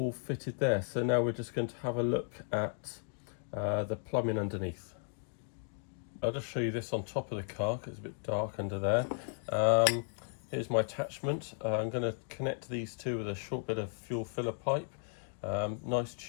fitted there. So now we're just going to have a look at the plumbing underneath. I'll just show you this on top of the car because it's a bit dark under there. Here's my attachment. I'm going to connect these two with a short bit of fuel filler pipe. Nice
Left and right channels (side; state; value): right; silent; 54 dB below the other